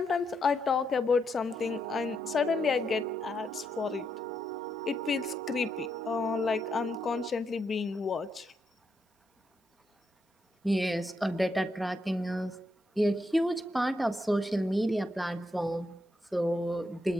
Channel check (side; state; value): both; normal; correlation 0.80